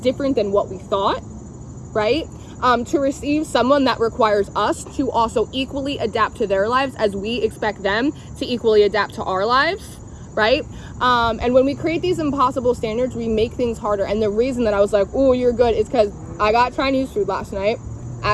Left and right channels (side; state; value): both; identical; correlation 1.00